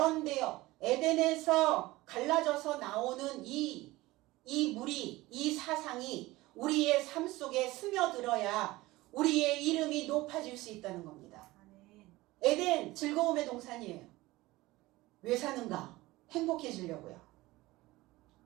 에덴에서 갈라져서 나오는 이 물이, 이 사상이 우리의 삶 속에 스며들어야 우리의 이름이 높아질 수 있다는 겁니다. 에덴 즐거움의 동산이에요. 왜 사는가? 행복해지려고요.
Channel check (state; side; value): quieter; left; 19.3 dB